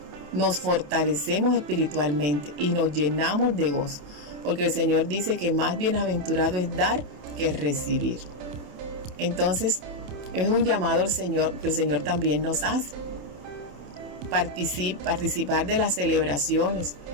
nos fortalecemos espiritualmente y nos llenamos de gozo, porque el Señor dice que más bienaventurado es dar que recibir. Entonces, es un llamado al Señor que el Señor también nos hace. Participar de las celebraciones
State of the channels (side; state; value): left; late; 28 ms